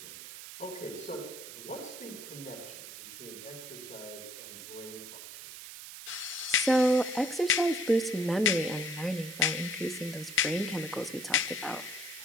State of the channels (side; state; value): right; noise; hiss, 12 dB below the sound